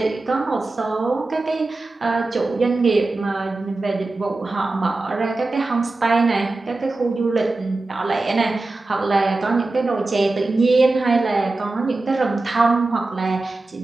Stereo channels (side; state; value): left; quieter; 3.2 dB